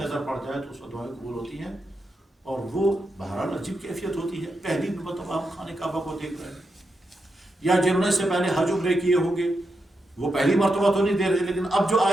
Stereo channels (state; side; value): normal; both; correlation 0.86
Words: پڑ جائے تو اس وقت دعائیں قبول ہوتی ہیں. اور وہ بہرحال عجیب کیفیت ہوتی ہے, پہلی مرتبہ ہم خانہ کعبہ کو دیکھ رہے ہیں, یا جنہوں نے سے پہلے حج عمرے کیے ہوں گے وہ پہلی مرتبہ تو نہیں دے رہے, لیکن اب جو